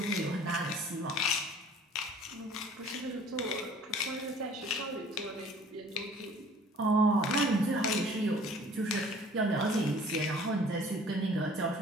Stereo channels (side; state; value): both; normal; correlation 0.51